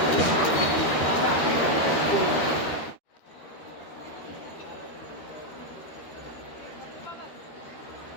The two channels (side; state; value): right; late; 13 ms